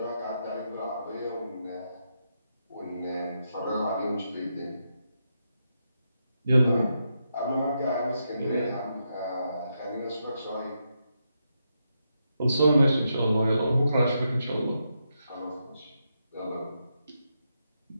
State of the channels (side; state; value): both; inverted; correlation -0.83